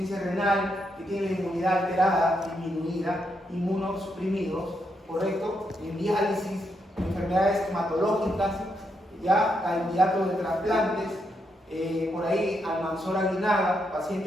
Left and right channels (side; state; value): both; normal; correlation 0.80